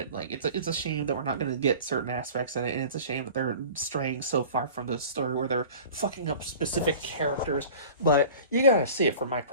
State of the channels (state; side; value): inverted; both; correlation -0.41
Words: Like, it's a shame that we're not going to get certain aspects in it, and it's a shame that they're straying so far from the story where they're fucking up specific characters. But you gotta see it from my